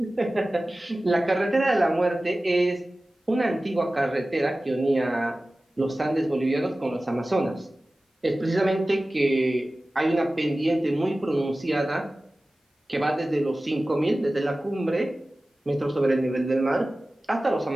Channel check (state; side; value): normal; both; correlation 0.96